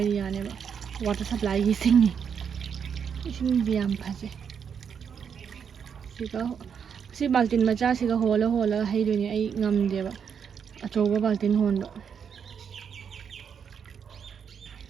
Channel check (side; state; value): left; quieter; 7.2 dB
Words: ꯌꯥꯅꯦꯕ ꯋꯥꯇꯔ ꯁꯄ꯭ꯂꯥꯏꯒꯤ ꯏꯁꯤꯡꯗꯤ ꯌꯥꯝ ꯐꯖꯩ ꯁꯤ ꯕꯥꯜꯇꯤꯟ ꯃꯆꯥꯁꯤꯒ ꯍꯣꯜꯂꯒ ꯍꯩꯗꯣꯏꯅꯦ ꯑꯩ ꯉꯝꯗꯦꯕ ꯑꯆꯧꯕ ꯕꯥꯜꯇꯤꯟ ꯍꯣꯟꯕ